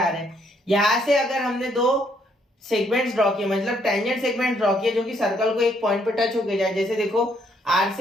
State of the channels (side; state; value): both; normal; correlation 0.70